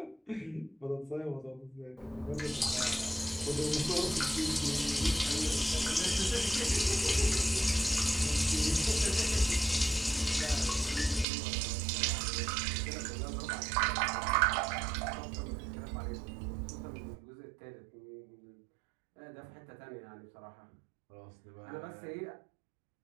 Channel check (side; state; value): left; drops out; at 11.2 s